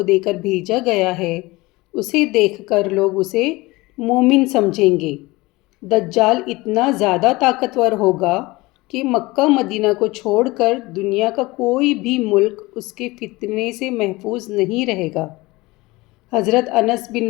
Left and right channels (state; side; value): quieter; right; 21.6 dB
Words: دے کر بھیجا گیا ہے اسے دیکھ کر لوگ اسے مومن سمجھیں گے۔ دجال اتنا زیادہ طاقتور ہوگا کہ مکہ مدینہ کو چھوڑ کر دنیا کا کوئی بھی ملک اس کے فتنے سے محفوظ نہیں رہے گا۔ حضرت انس بن